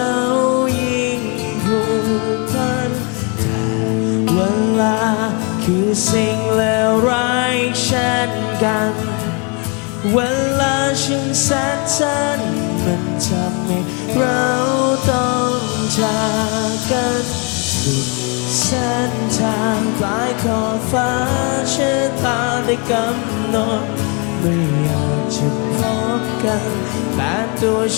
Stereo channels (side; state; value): right; quieter; 33.9 dB